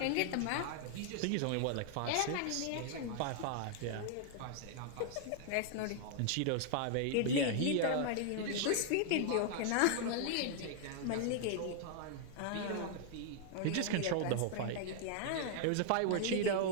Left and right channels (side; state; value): both; different; correlation 0.00